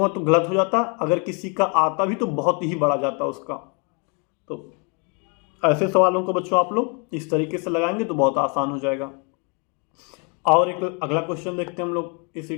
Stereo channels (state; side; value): quieter; right; 35.4 dB